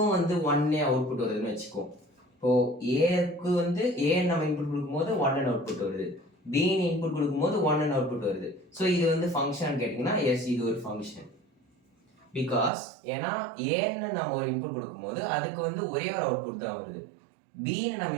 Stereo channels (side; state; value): left; drops out; at 12.7 s